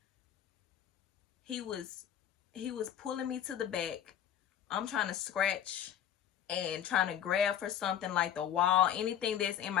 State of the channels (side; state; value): right; quieter; 9.9 dB